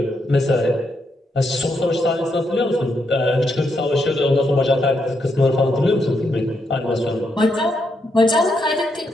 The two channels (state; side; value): normal; both; correlation 0.80